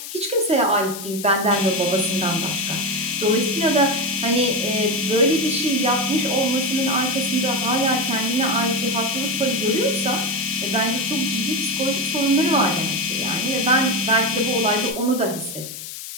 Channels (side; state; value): left; noise; hiss, 10 dB below the sound